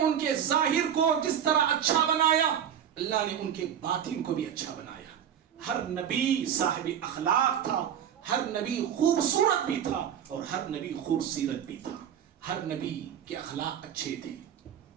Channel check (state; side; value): quieter; left; 9.2 dB